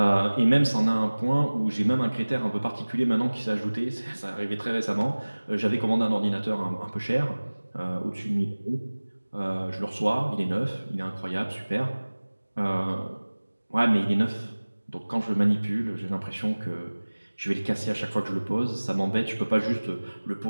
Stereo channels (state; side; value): inverted; both; correlation -1.00